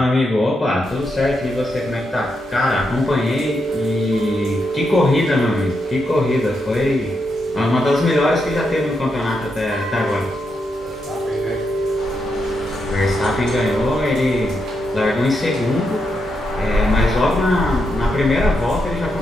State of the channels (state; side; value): normal; both; correlation 0.83